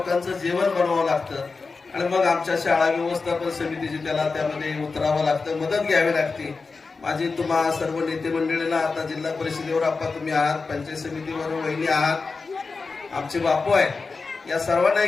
जेवण बनवावं लागतं आणि मग आमच्या शाळा व्यवस्थापन समितीची त्याला त्यामध्ये उतरावं लागतं, मदत घ्यावी लागते। माझी तुम्हा सर्व नेते मंडळीला आता जिल्हा परिषदेवर आपण तुम्ही आहात, पंचायत समितीवर वहिनी आहात, आमचे बापू आहेत, या सर्वांना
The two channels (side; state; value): right; quieter; 4.3 dB